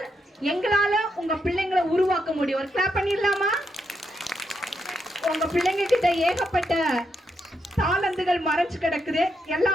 எங்களால உங்க பிள்ளைங்களை உருவாக்க முடியும். ஒரு கிளாப் பண்ணிடலாமா? உங்க பிள்ளைங்க கிட்ட ஏகப்பட்ட தாளந்துகள் மறைச்சு கிடக்குது,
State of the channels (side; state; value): both; normal; correlation 0.81